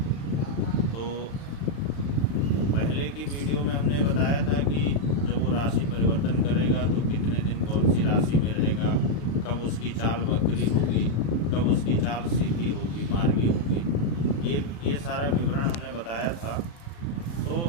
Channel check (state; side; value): late; right; 35 ms